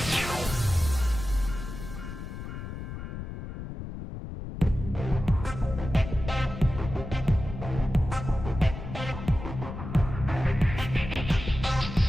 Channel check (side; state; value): left; noise; rumble, 8 dB below the sound